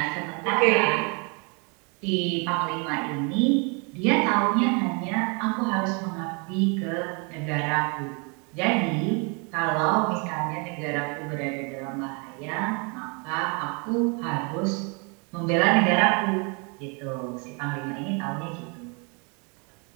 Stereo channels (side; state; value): left; quieter; 33.6 dB